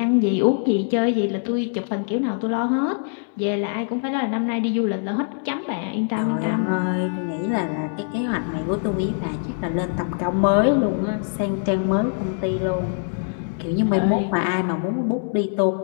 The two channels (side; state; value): right; silent; digital silence